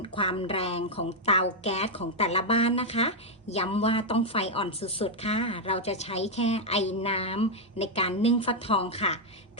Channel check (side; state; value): both; normal; correlation 0.00